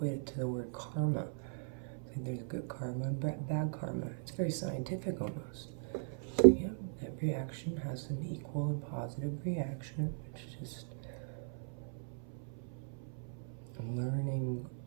it to the word karma. Like there's good karma and bad karma. It's very scientific almost. So yeah, every action has an equal and positive reaction. It's just learning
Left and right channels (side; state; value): left; silent; 52 dB below the other